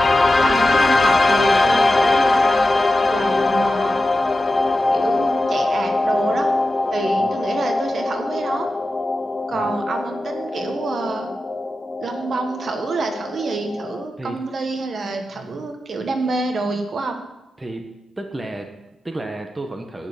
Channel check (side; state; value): both; normal; correlation 0.93